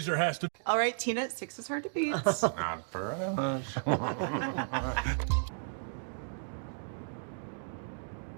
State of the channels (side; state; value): left; silent; digital silence